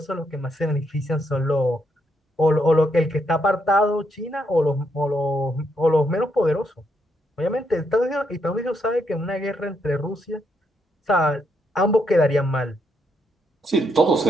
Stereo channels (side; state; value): both; normal; correlation 0.77